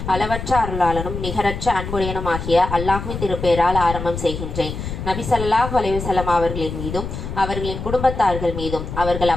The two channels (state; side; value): noise; left; rumble, 7 dB below the sound